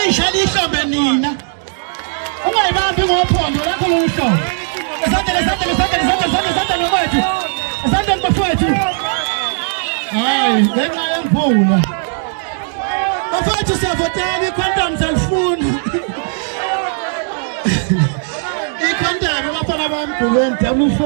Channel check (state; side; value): silent; left; digital silence